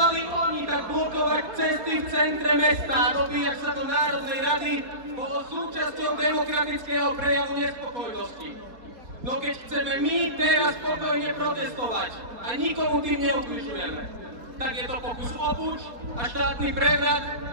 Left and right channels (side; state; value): left; late; 4.1 ms